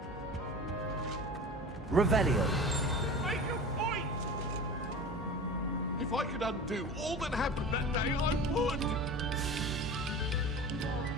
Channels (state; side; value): normal; both; correlation 0.35